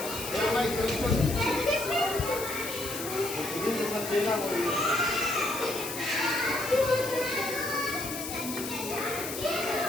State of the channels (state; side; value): noise; left; hiss, 7 dB below the sound